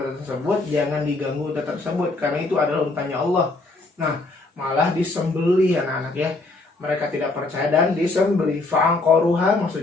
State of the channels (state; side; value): quieter; right; 3.2 dB